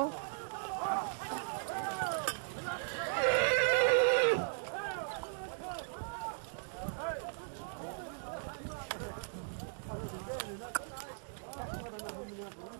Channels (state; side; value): silent; left; digital silence